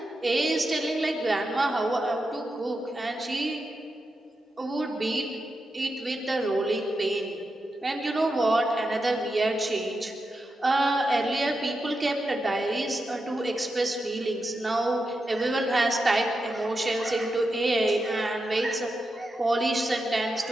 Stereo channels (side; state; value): both; normal; correlation 0.88